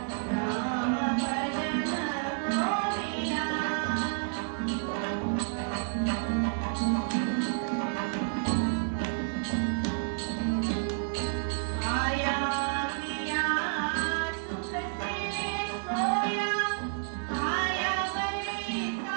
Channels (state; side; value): silent; left; 58 dB below the other